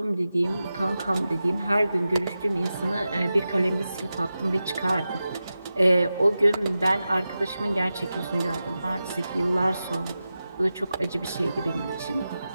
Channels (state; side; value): inverted; both; correlation -0.93